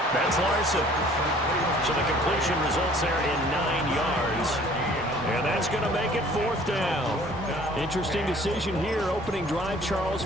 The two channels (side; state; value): both; normal; correlation 0.53